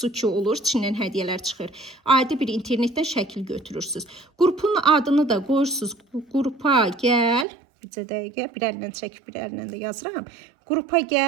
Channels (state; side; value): drops out; left; at 7.5 s